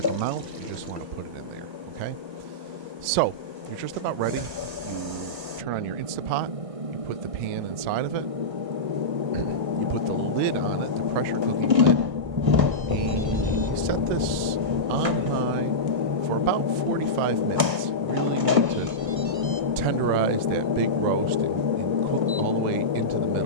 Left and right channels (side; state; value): left; late; 1.6 ms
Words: amount. You just want to put it in there, okay? So you're just about ready. You turn on your Instapot. You put the pan inside of it. You put the lid on it, the pressure cooking lid, and you set this on high for about 45 minutes. Really need to tenderize that big roast and cook all the way into the